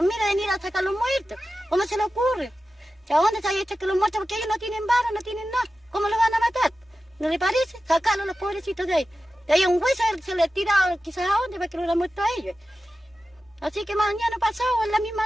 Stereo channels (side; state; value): both; normal; correlation 0.93